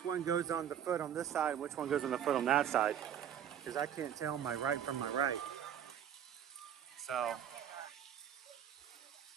one goes on the foot on this side and which one goes on the foot on that side, because I can't tell my right from my right. So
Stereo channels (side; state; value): left; quieter; 9.6 dB